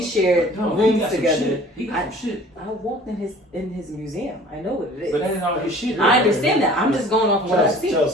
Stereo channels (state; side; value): normal; both; correlation 0.48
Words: no. shared No, he rooms got some together. shit. He got some shit. I walked in his museum. I know what it is. But that ain't all his shit. I understand that. I'm just going off of what I see.